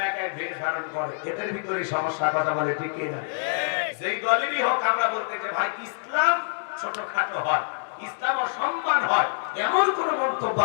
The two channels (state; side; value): silent; right; 61 dB below the other